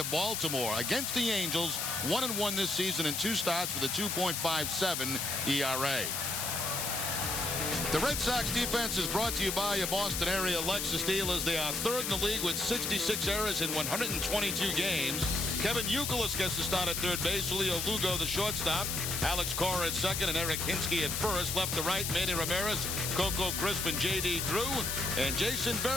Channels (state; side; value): noise; left; hiss, 1 dB below the sound